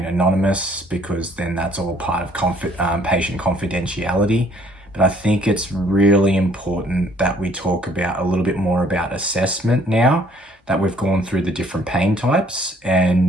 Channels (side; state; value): both; normal; correlation 0.61